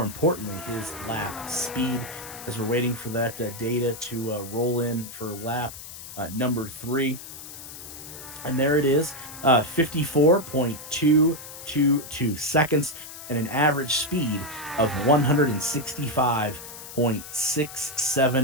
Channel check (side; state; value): left; noise; hiss, 13 dB below the sound